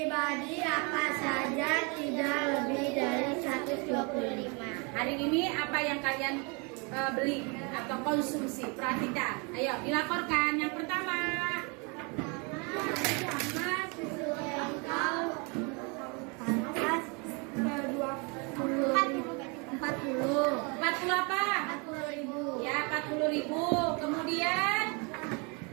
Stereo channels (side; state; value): left; quieter; 32.0 dB